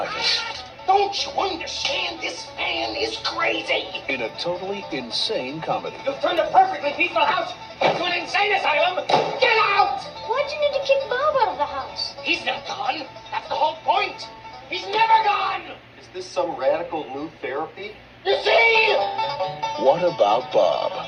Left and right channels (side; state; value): both; identical; correlation 1.00